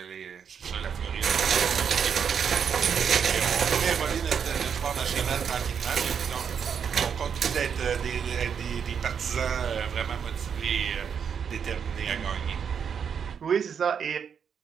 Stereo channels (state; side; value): quieter; left; 7.2 dB